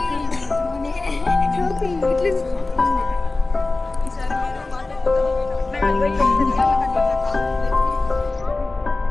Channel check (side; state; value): right; quieter; 3.3 dB